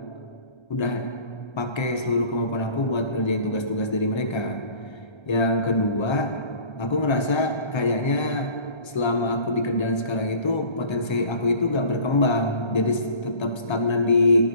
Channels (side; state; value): right; late; 1.3 ms